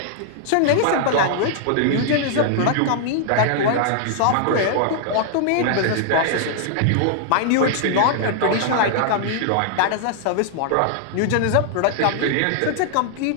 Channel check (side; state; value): both; different; correlation -0.01